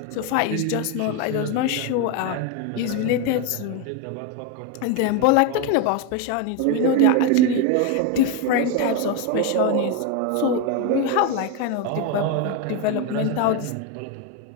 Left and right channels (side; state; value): both; different; correlation 0.02